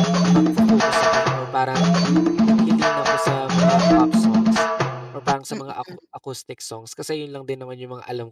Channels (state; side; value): identical; both; correlation 1.00